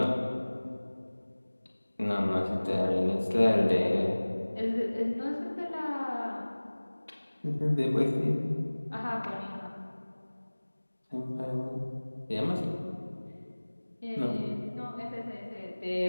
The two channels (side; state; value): both; inverted; correlation -1.00